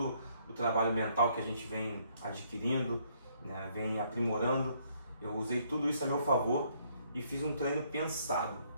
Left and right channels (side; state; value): both; inverted; correlation -0.68